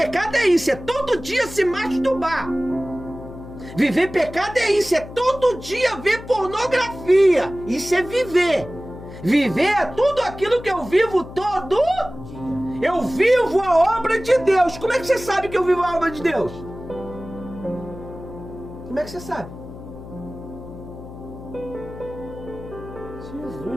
é isso, é todo dia se masturbar. Viver em pecado é isso, é todo dia ver pornografia. Isso é viver. Viver é tudo aquilo que eu vivo todo dia. Eu vivo a obra de Deus. Como é que você sabe que eu vivo a obra de Deus? Como é que você sabe?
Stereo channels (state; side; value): noise; left; hum, 14 dB below the sound